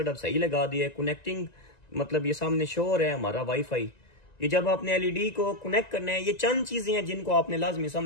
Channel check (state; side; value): late; right; 1.9 ms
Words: अब सही लगा दिया है। कनेक्टिंग मतलब ये सामने शो हो रहा है हमारा वाईफाई। ये जब आपने एलईडी को कनेक्ट करना है, ये चंद चीजें हैं जिनको आपने लाजमी